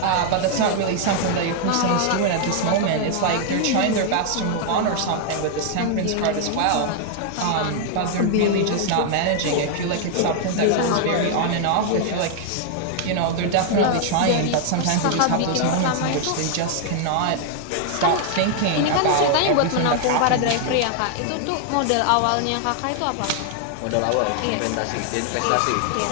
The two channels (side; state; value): both; different; correlation 0.00